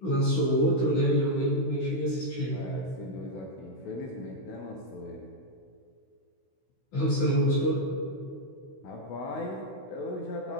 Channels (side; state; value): right; late; 16 ms